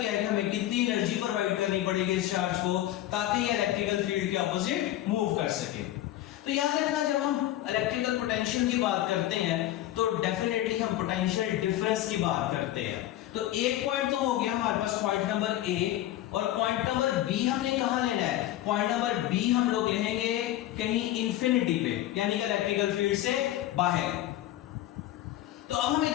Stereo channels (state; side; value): quieter; right; 13.9 dB